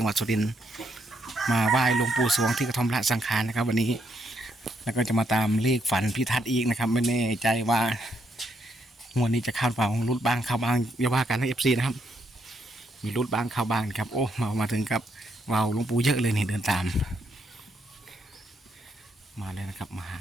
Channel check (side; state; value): both; normal; correlation 0.76